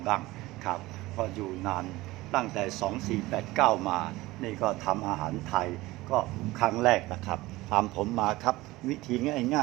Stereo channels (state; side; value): quieter; left; 19.2 dB